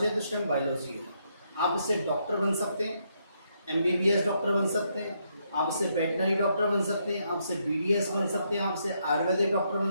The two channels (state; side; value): inverted; both; correlation -0.76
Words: है तो स्टेम बायोलॉजी है। आप इससे डॉक्टर बन सकते हैं, एमबीबीएस डॉक्टर बन सकते हैं, आप इससे वेटनरी डॉक्टर बन सकते हैं, आपसे बीडीएस बन सकते हैं, आपसे आयुर्वेदिक डॉक्टर